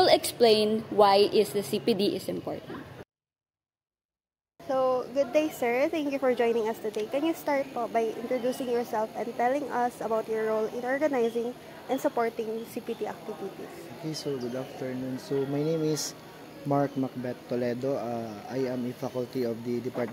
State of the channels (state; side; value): identical; both; correlation 1.00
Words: explain why the CPD is important. So, good day sir. Thank you for joining us today. Can you start po by introducing yourself and telling us about your role in organizing and supporting CPD activities? Okay, so good afternoon. So my name is Mark Macbeth Toledo. I am a faculty of the